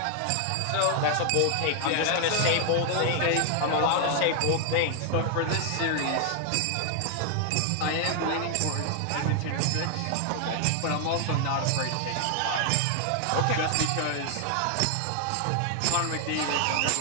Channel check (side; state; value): both; different; correlation 0.00